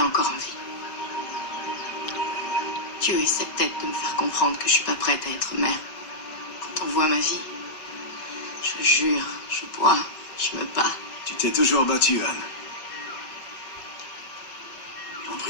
encore en vie. Dieu essaie peut-être de me faire comprendre que je suis pas prête à être mère. Quand on voit ma vie, je jure, je bois, je me bats. Tu t'es toujours battue, Anne. En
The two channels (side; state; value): right; late; 5.2 ms